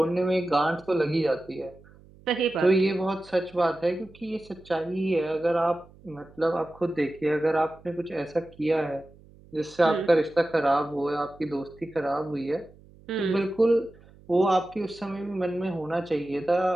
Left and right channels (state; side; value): noise; right; hum, 25 dB below the sound